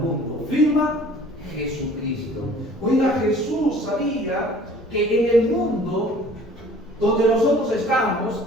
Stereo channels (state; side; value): normal; both; correlation 0.50